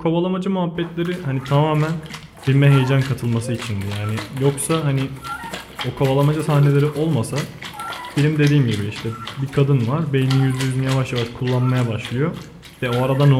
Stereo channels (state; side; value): identical; both; correlation 1.00